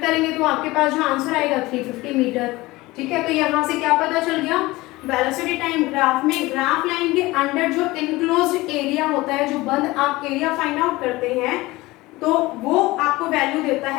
करेंगे तो आपके पास जो आंसर आएगा 350 मीटर। ठीक है, तो यहाँ से क्या पता चल गया, वेलोसिटी टाइम ग्राफ में ग्राफ लाइन के अंडर जो इनक्लोज्ड एरिया होता है, जो बंद आप एरिया फाइंड आउट करते हैं, तो वो आपको वैल्यू देता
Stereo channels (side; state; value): right; quieter; 20.1 dB